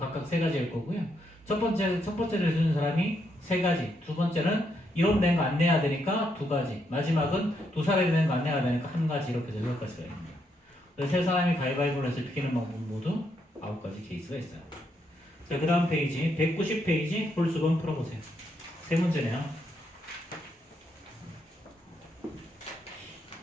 3가지일 거고요. 첫 번째를 주는 사람이 3가지. 두 번째는 이런 된 거 안 내야 되니까 2가지. 마지막은 두 사람이 된 거 안 내야 되니까 1가지. 이렇게 해서 6가지가 있습니다. 그래서 세 사람이 가위바위보를 해서 비기는 방법 모두 9가지 케이스가 있어요. 자, 그 다음 페이지 190페이지 홀수번 풀어보세요. 세 문제네요.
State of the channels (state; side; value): normal; both; correlation 0.77